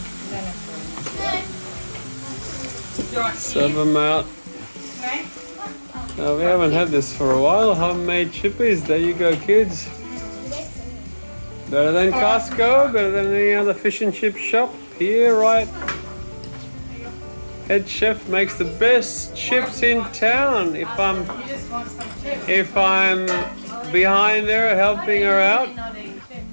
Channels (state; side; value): inverted; both; correlation -1.00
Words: Serve them out. Now, we haven't had this for a while. Homemade chippies. There you go, kids. Better than Costco, better than any other fish and chip shop. Here, right? Head chef makes the best chips in town. You just want some chips. If I'm behind her helping her out. Not eat chips.